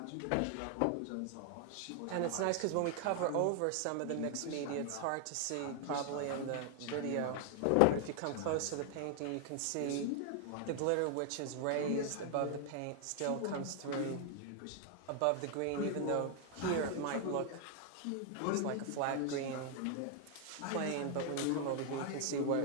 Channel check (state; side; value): different; both; correlation 0.00